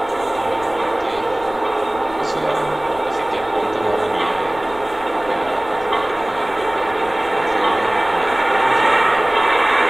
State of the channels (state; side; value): noise; left; rumble, 21 dB below the sound